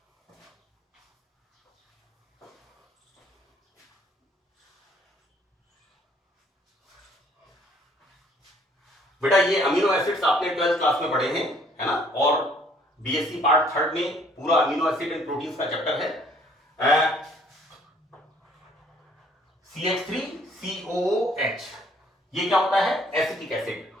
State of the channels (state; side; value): normal; both; correlation 0.61